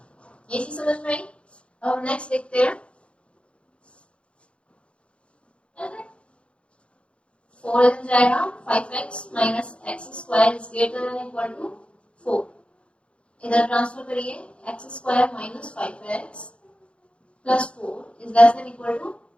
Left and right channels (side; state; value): right; late; 0.059 ms